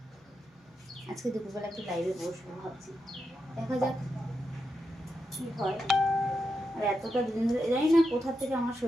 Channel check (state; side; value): normal; both; correlation 0.86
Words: আজকে দুপুরবেলা একটু লাইভে বসবো ভাবছি, দেখা যাক কী হয়। আর এতটা দুদিন ধরে জানি না কোথা থেকে আমার